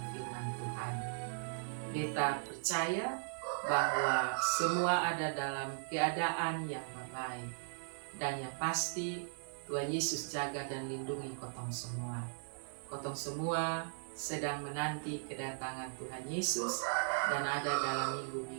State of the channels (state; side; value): silent; left; 53 dB below the other